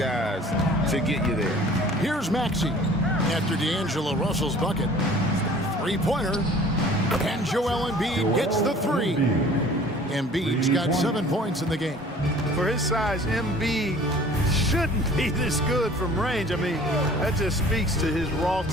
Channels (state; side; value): normal; both; correlation 0.49